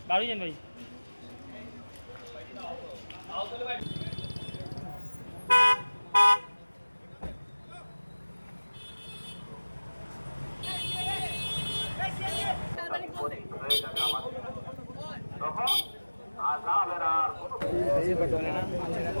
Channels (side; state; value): both; inverted; correlation -1.00